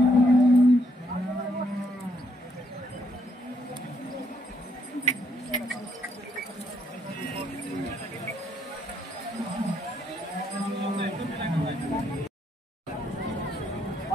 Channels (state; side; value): normal; both; correlation 0.72